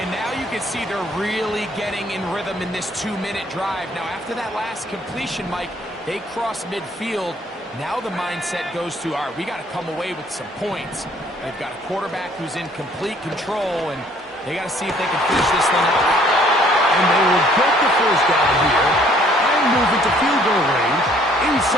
And now you can see they're really getting in rhythm in this 2-minute drive. Now, after that last completion, Mike, they cross midfield. Now the mindset goes to, all right, we got to come away with some points. They've got a quarterback who's in complete control, and they got to see if they can finish this thing out. And they will get the first down here and move into field goal range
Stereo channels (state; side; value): normal; both; correlation 0.60